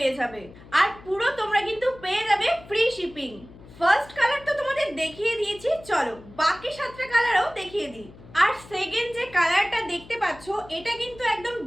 যাবে, আর পুরো তোমরা কিন্তু পেয়ে যাবে ফ্রি শিপিং। ফার্স্ট কালার তো তোমাদের দেখিয়ে দিয়েছি, চলো বাকি 7টা কালারও দেখিয়ে দিই। আর সেকেন্ড যে কালারটা দেখতে পাচ্ছ, এটা কিন্তু একদম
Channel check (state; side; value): noise; left; hum, 20 dB below the sound